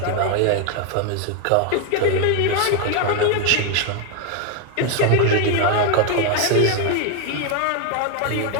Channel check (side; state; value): both; different; correlation 0.01